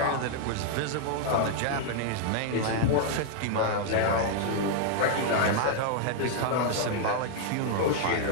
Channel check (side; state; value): both; different; correlation 0.00